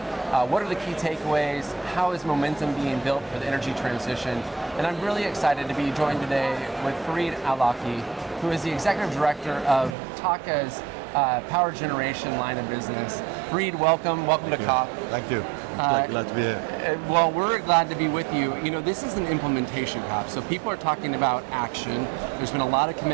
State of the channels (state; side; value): drops out; left; at 10.0 s